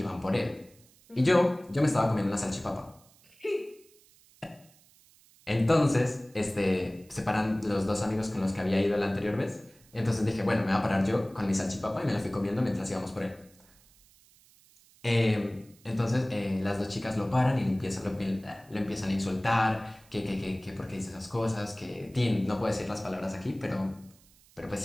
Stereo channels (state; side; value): noise; right; hiss, 28 dB below the sound